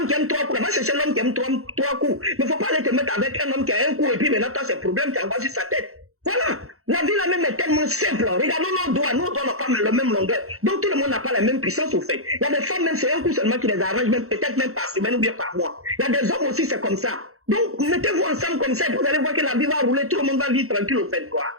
qui aime 3 coups, va chercher l'homme qui aime 3 coups. Mais il ne faut pas aller te mettre avec un homme qui a un coup et puis maintenant tu as ces problèmes, tu envoies sur sa tête. Voilà. La vie là même est tellement simple. Regardons nos doigts n'ont pas la même longueur. Donc tout le monde n'a pas la même puissance au fait. Il y a des femmes même, c'est un coup seulement qui les arrange, même peut-être même par semaine ou bien par mois. Il y a des hommes aussi, c'est comme ça. Donc, mettez-vous ensemble comme ça, vous allez voir que la vie va rouler, tout le monde va vivre tranquille au fait, quoi.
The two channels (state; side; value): late; left; 0.63 ms